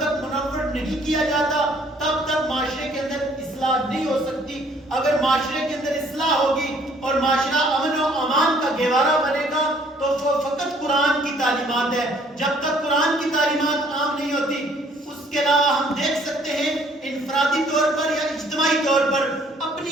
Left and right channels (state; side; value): normal; both; correlation 0.61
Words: منور نہیں کیا جاتا تب تک معاشرے کے اندر اصلاح نہیں ہو سکتی۔ اگر معاشرے کے اندر اصلاح ہوگی اور معاشرہ امن و امان کا گہوارہ بنے گا تو وہ فقط قرآن کی تعلیمات ہے۔ جب تک قرآن کی تعلیمات عام نہیں ہوتی، اس کے علاوہ ہم دیکھ سکتے ہیں انفرادی طور پر یا اجتماعی طور پر